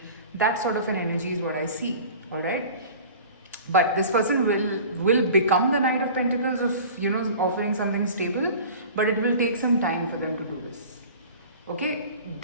That sort of an energy is what I see. All right. But this person will become the Knight of Pentacles of, you know, offering something stable, but it will take some time for them to do this. Okay,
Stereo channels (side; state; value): both; inverted; correlation -0.41